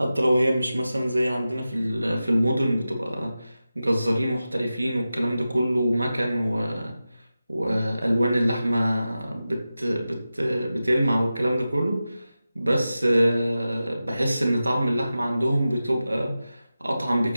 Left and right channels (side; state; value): both; inverted; correlation -0.93